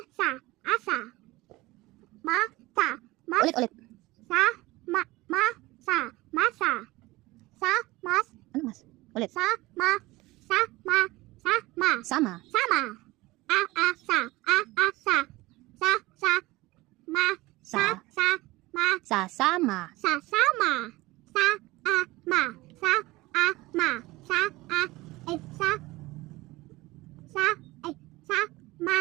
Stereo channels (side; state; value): left; quieter; 20.1 dB